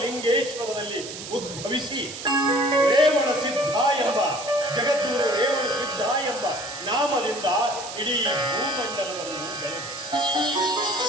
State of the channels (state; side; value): noise; right; hiss, 10 dB below the sound